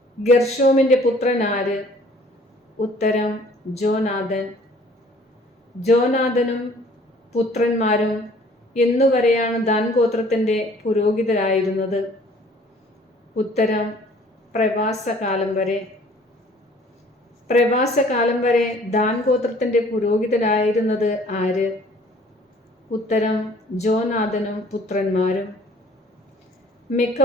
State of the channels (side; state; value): both; normal; correlation 0.55